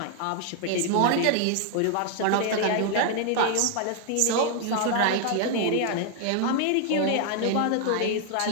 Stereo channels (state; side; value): different; both; correlation 0.00